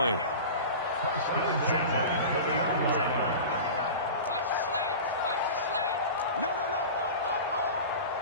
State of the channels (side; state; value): both; inverted; correlation -0.32